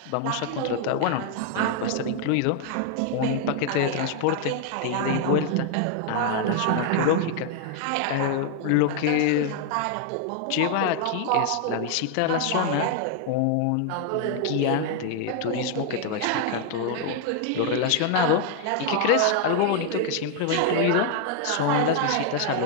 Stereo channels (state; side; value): different; both; correlation 0.00